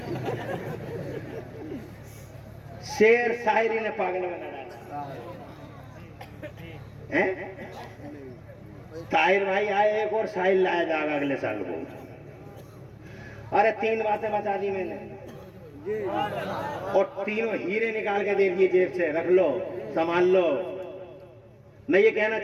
शेर शायरी ने पागल बना डाला है। ताहिर भाई आए, एक और शायर लाया जाएगा अगले साल को। अरे 3 बातें बता दी मैंने और तीनों हीरे निकाल के दे दिए जेब से, रख लो संभाल लो। मैं ये कहना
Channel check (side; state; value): both; identical; correlation 1.00